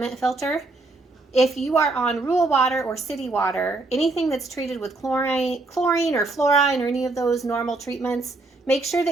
filter. If you are on rural water or city water, anything that's treated with chlorine or fluorine or any of those normal treatments, make sure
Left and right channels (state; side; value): quieter; left; 3.2 dB